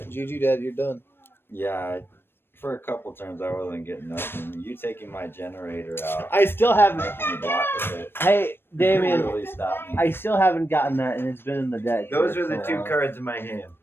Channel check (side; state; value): right; late; 0.10 ms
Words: GG Dad, you're done. Yeah, for a couple turns I wasn't getting nothing. You taking my generator out, I still haven't. making me block with it. Hey, Damien, really stopped me. I still haven't gotten that, and it's been in the deck. Those for are the so two long. cards in my hand.